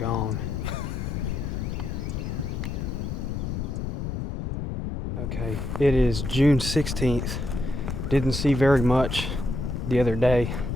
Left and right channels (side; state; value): left; noise; rumble, 3 dB below the sound